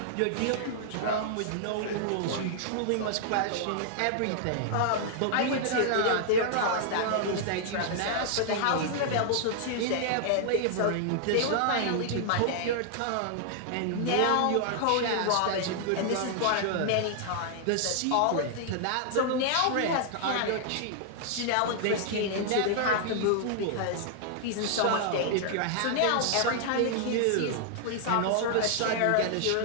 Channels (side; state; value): both; different; correlation -0.01